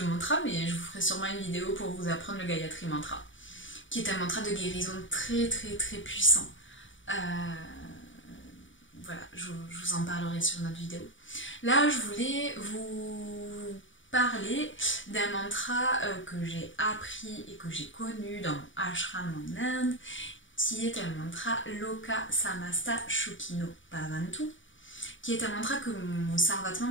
mantra, mais je vous ferai sûrement une vidéo pour vous apprendre le Gayatri Mantra, qui est un mantra de guérison très très très puissant. Voilà, je vous en parlerai sur notre vidéo. Là, je voulais vous parler d'un mantra que j'ai appris et que j'ai connu dans mon ashram en Inde, qui est un mantra Loka Samasta Shukino Bhavantu, qui est un mantra que mon Sarvatma,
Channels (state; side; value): late; right; 0.56 ms